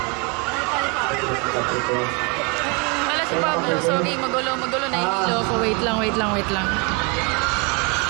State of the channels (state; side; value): quieter; left; 31.6 dB